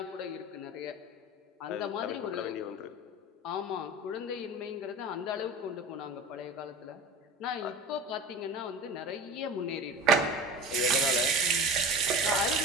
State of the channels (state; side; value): normal; both; correlation 0.34